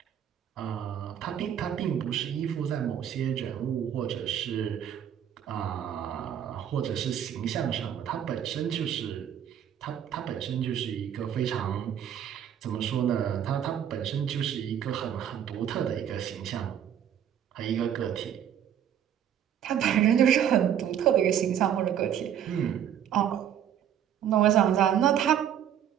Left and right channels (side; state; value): left; quieter; 9.6 dB